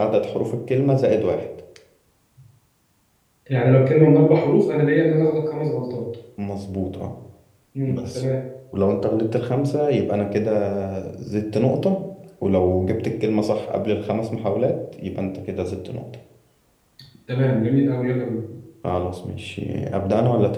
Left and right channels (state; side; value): identical; both; correlation 1.00